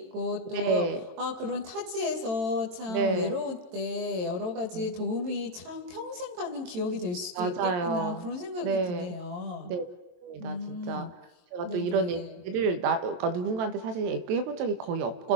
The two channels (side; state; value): left; late; 22 ms